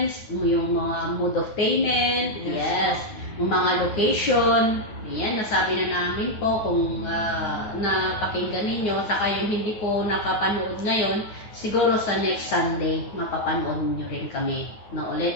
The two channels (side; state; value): right; late; 9.4 ms